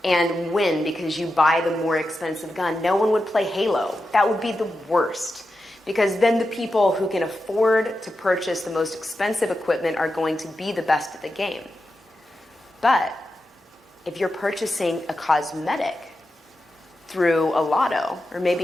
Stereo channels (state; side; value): normal; both; correlation 0.90